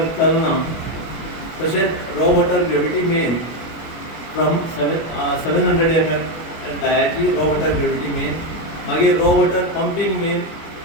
Kalna. तशेंच raw water gravity main from 700 mm डायाची रॉ वॉटर ग्रेविटी मेन. मागीर raw water pumping main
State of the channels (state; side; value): late; right; 25 ms